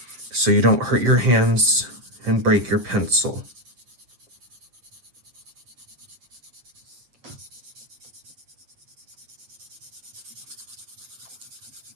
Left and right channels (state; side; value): late; left; 7.8 ms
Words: so you don't hurt your hands and break your pencil.